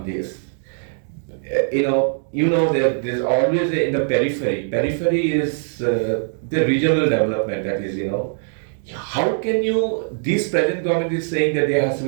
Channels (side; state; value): left; silent; digital silence